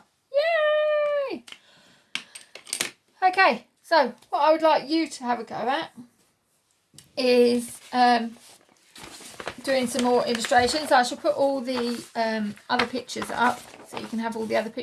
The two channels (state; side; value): identical; both; correlation 1.00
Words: Yay! Okay, so what I would like you to have a go at is doing some more illustrations. I shall put all the other pictures up so you can have all the other